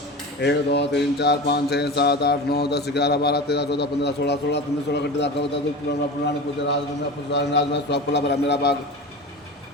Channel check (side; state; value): both; normal; correlation 0.29